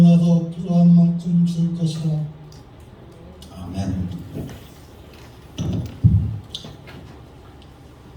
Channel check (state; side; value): identical; both; correlation 1.00